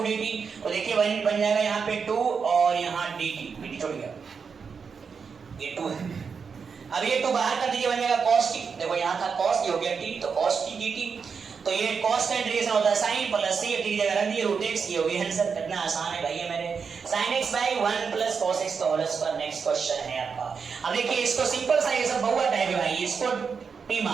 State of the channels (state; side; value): quieter; left; 5.8 dB